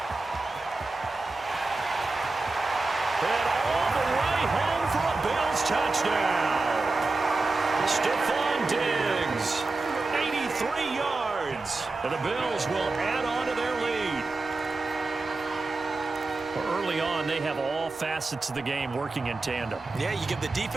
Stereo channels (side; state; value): left; quieter; 3.4 dB